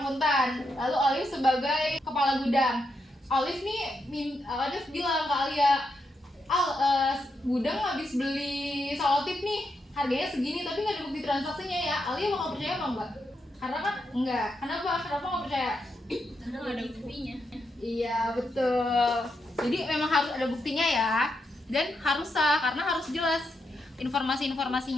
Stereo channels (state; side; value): normal; both; correlation 0.83